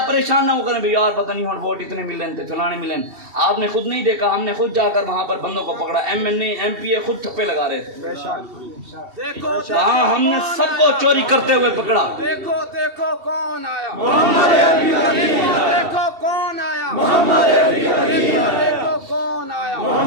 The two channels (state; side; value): late; left; 2.7 ms